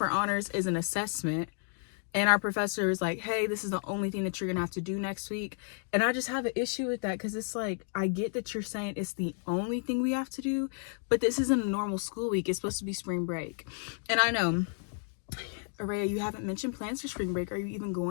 honors is an assessment. And our professor is like, hey, this is the only thing that you're going to have to do next week. And I just have an issue with that because it's like, I get that you're saying it's the only thing we have to do, but this isn't a normal school week. It's supposed to be spring break. And I know, Areyah, you haven't mentioned plans for spring break. Are you even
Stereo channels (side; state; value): right; silent; 57 dB below the other